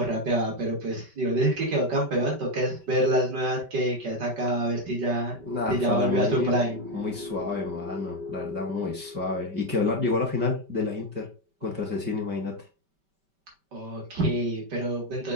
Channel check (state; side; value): late; left; 5.2 ms